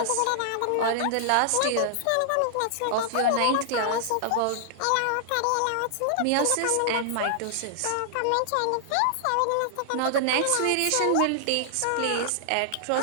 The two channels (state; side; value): different; both; correlation -0.01